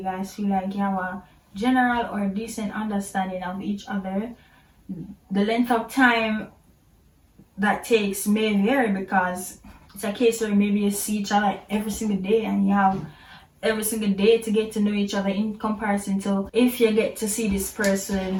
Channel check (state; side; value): identical; both; correlation 1.00